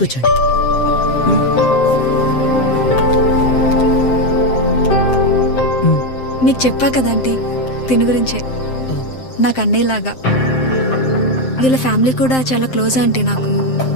కూర్చోండి. మీకు చెప్పా కదంటీ తిని గురించే. నాకు అన్నయ్యలాగా. వీళ్ళ ఫ్యామిలీ కూడా చాలా క్లోజ్ ఆంటీ నాకు.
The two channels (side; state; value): right; late; 7.7 ms